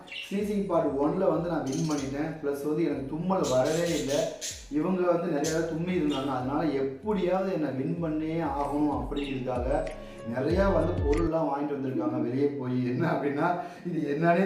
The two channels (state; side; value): identical; both; correlation 1.00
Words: ஸ்னீசிங் பார்ட் 1ல் வந்து நான் வின் பண்ணிட்டேன். ப்ளஸ் வந்து எனக்கு தும்மல் வரவே இல்லை. இவங்க வந்து நிறையா தும்மி இருந்தாங்க. அதனால எப்படியாவது என்னை வின் பண்ணே ஆகணும் அப்படிங்கிறதுக்காக நிறையா வந்து பொருள்லாம் வாங்கிட்டு வந்திருக்காங்க வெளியே போய். என்ன அப்படின்னா இது என்னன்னே